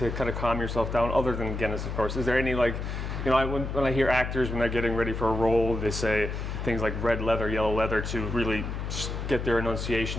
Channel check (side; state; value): left; noise; hum, 4 dB below the sound